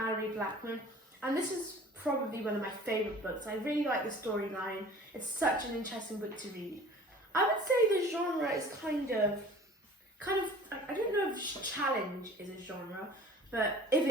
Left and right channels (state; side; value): normal; both; correlation 0.45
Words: Blackman, and this is probably one of my favourite books. I really like the storyline. It's such an interesting book to read. I would say the genre is kind of, I don't know if challenge is a genre, but if